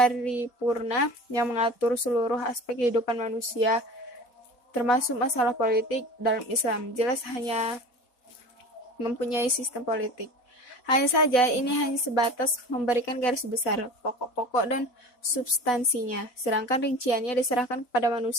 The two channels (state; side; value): late; right; 4.1 ms